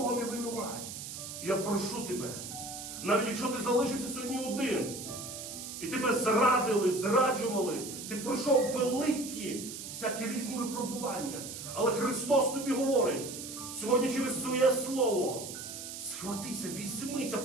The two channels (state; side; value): noise; right; hiss, 9 dB below the sound